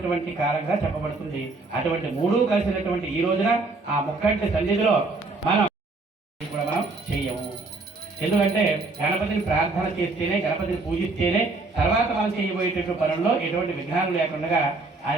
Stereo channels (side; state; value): left; quieter; 3.5 dB